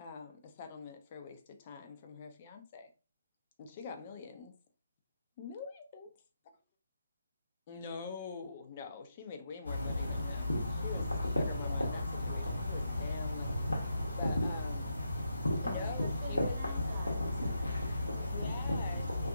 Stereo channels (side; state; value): both; inverted; correlation -0.83